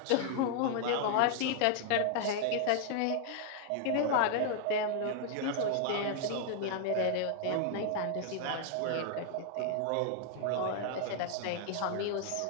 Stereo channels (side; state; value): both; different; correlation 0.00